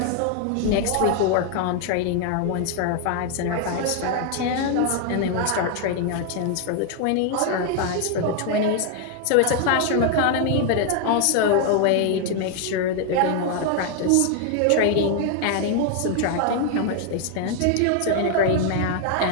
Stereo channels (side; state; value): both; different; correlation 0.00